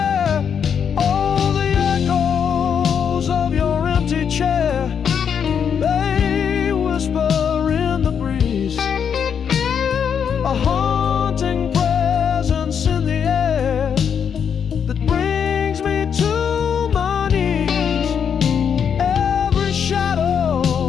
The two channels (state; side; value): quieter; right; 7.5 dB